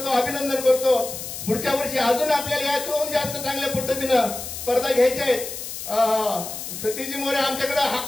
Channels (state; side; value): noise; left; hiss, 8 dB below the sound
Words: अभिनंदन करतो. पुढच्या वर्षी अजून आपल्याला यातून जास्त चांगल्या पद्धतीनं स्पर्धा घ्यायच्या आहेत. सतीजी मोरे आमच्याकडे